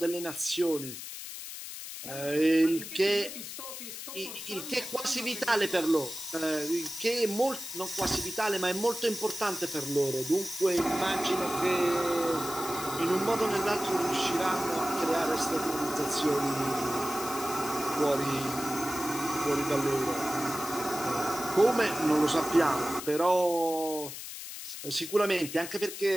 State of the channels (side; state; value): left; noise; hiss, 9 dB below the sound